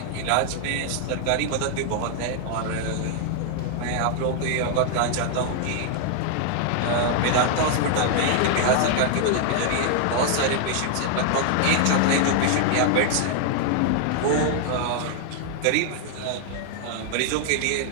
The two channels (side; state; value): both; different; correlation 0.00